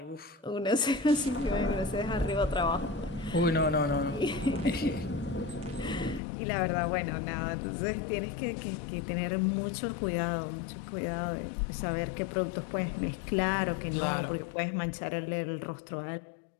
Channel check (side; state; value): right; drops out; at 6.2 s